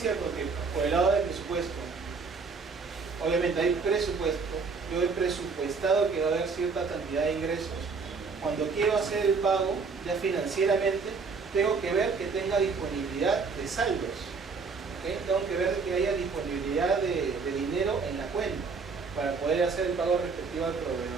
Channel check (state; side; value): quieter; left; 4.8 dB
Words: que por el lado del presupuesto, obviamente hay presupuesto, yo he presupuestado que va a haber cierta cantidad de ingresos, cuando quiero hacer el pago, ya financieramente, tengo que ver que tenga disponibilidad de saldos. ¿Okay? Tengo que ver que haya disponibilidad de dinero en la cuenta para poder hacer el pago respectivo al